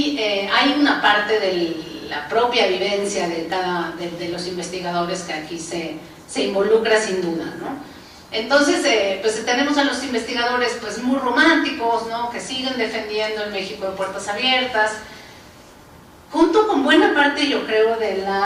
hay una parte de la propia vivencia de los investigadores que aquí se involucra sin duda, ¿no? Entonces, pues tenemos a los investigadores pues muy románticos, ¿no?, que siguen defendiendo el México de puertas abiertas, junto con buena parte, yo creo, de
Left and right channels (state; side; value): identical; both; correlation 1.00